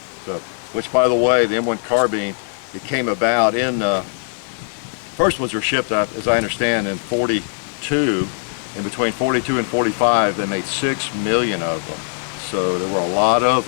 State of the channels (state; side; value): silent; right; digital silence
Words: So, which, by the way, the M1 carbine, it came about in first ones were shipped, as I understand, in 42. And between 42 and 45, they made 6 million of them. So there were a lot of